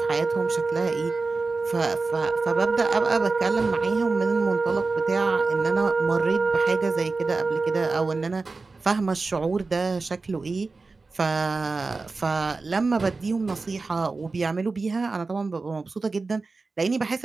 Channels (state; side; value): quieter; left; 3.9 dB